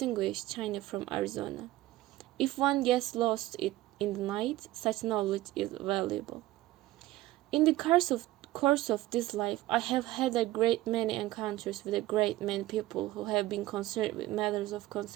China from Arizona. If one gets lost in the night, such knowledge is valuable. In the course of this life, I have had a great many encounters with a great many people who have been concerned with matters of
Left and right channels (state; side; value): quieter; left; 16.5 dB